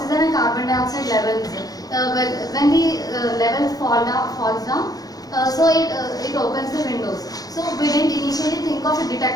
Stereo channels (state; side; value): late; right; 0.18 ms